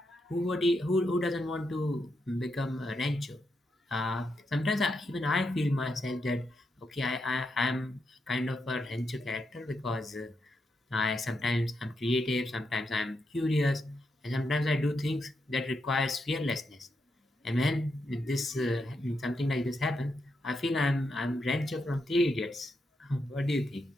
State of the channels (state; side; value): normal; both; correlation 0.83